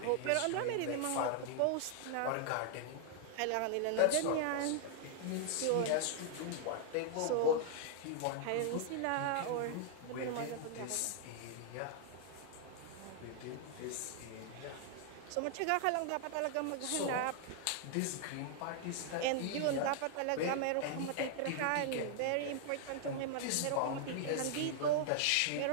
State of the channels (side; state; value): both; different; correlation 0.00